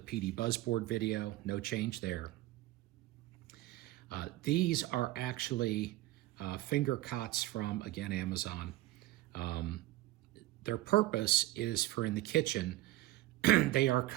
Buzzboard video, no change there. These are actually finger cots from, again, Amazon. Their purpose is for in the kitchen. They are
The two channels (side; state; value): left; quieter; 16.8 dB